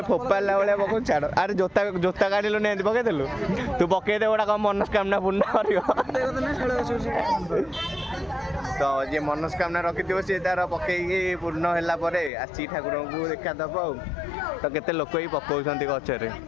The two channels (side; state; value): right; drops out; at 12.3 s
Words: फोपाला भाया पकड़ छाड़ अरे जोता जोता काढ़लु नहीं पकईदेलु तू पकईदे गोटा कौन मनस्कामना पूर्ण कर। तो जे मनस्कामना रखी सी तार पकईकि पूर्ण है आसी ठाकुर को देखा दब तो केते लोक ही पकाउछन्ति गछरे।